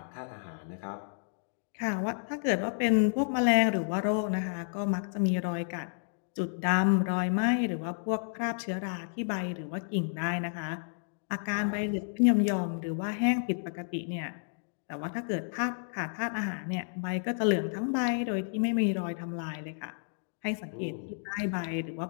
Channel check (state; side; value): silent; right; digital silence